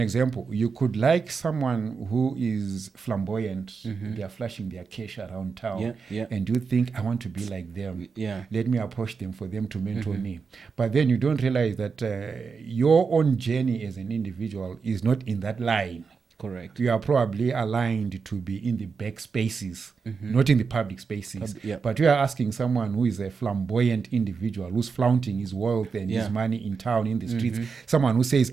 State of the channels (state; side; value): quieter; left; 5.3 dB